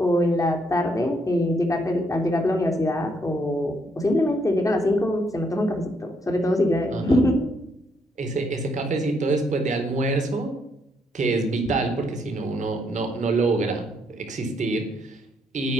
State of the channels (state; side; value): normal; both; correlation 0.73